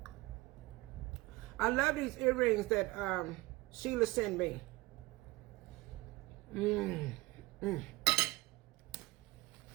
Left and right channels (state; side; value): quieter; left; 21.2 dB